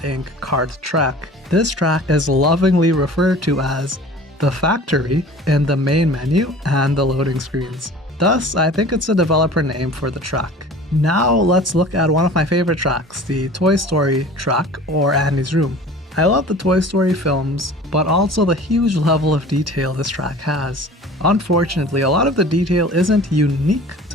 Kart Track. This track is lovingly referred to as the factory in the main menu and the loading screens. Thus, I think it's a developer name for the track. Now let's look at one of my favorite tracks, the Toy Story track, or Andy's Room. I love the Toy Story films, but also the huge level of detail this track has. Unfortunately, a lot of the detail isn't unique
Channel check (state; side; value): normal; both; correlation 0.43